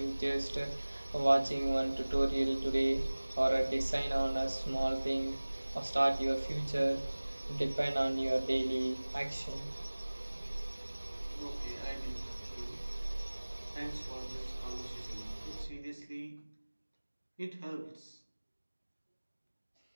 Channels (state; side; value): inverted; both; correlation -1.00